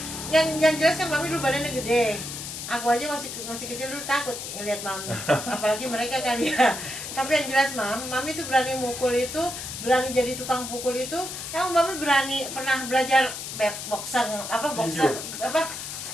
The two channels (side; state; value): left; noise; hiss, 7 dB below the sound